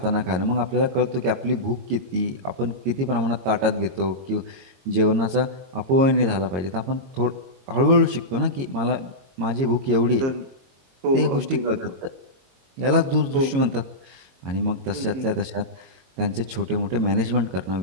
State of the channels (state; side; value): late; left; 22 ms